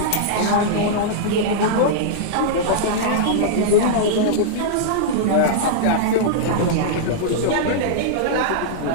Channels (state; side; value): different; both; correlation -0.02